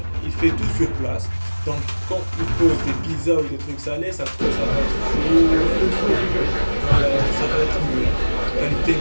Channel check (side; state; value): both; inverted; correlation -1.00